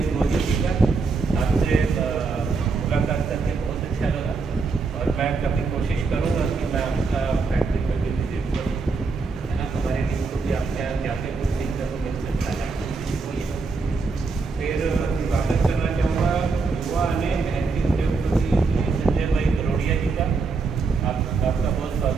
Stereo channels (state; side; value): quieter; left; 4.4 dB